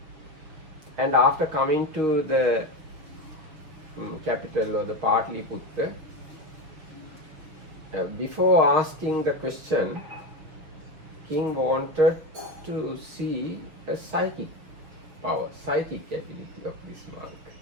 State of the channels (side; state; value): left; late; 6.8 ms